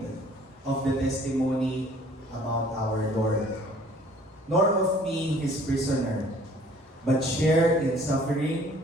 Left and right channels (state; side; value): normal; both; correlation 0.54